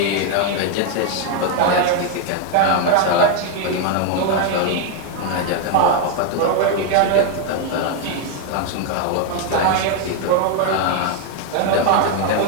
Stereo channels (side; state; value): both; different; correlation 0.01